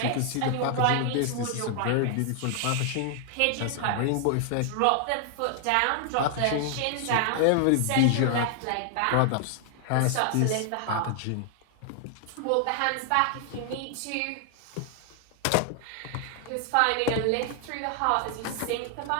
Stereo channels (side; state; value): both; different; correlation 0.00